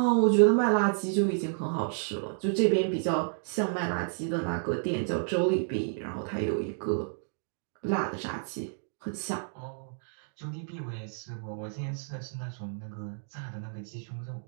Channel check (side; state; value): left; silent; digital silence